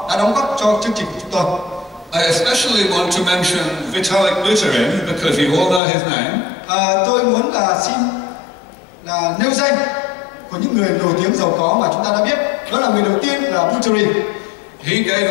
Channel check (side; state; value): right; drops out; at 5.8 s